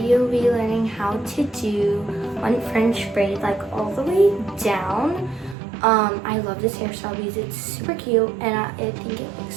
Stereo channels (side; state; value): left; drops out; at 5.6 s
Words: be learning how to do one French braid, like all the way down. I love this hairstyle because it's super cute and I think it looks